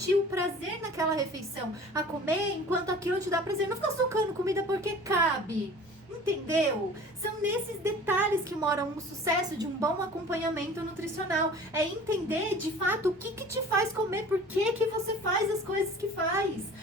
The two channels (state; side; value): normal; both; correlation 0.44